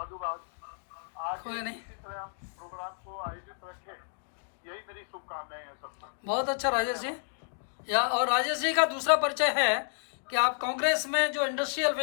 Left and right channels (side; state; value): right; silent; digital silence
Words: आगे कोई नहीं, इसी तरह हम प्रोग्राम को आयोजित रखें, यही मेरी शुभकामनाएं हैं सबको। बहुत अच्छा राजेश जी। या और राजेश जी का दूसरा परिचय है कि आप कांग्रेस में जो इंडस्ट्रियल